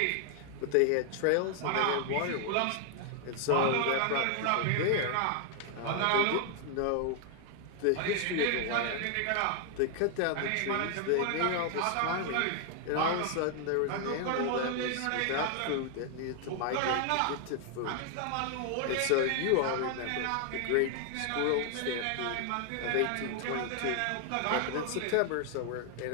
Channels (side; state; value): both; different; correlation 0.00